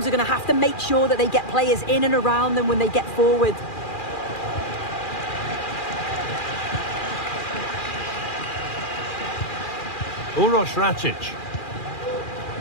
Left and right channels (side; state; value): right; late; 2.4 ms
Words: are going to have to make sure that they get players in and around them when they get forward. Uroš Račić.